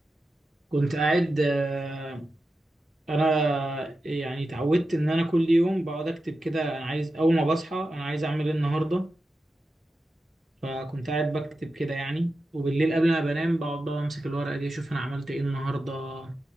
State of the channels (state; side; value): normal; both; correlation 0.91